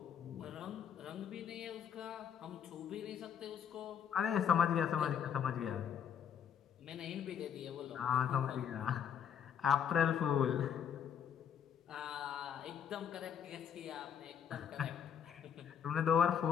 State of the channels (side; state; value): right; quieter; 8.3 dB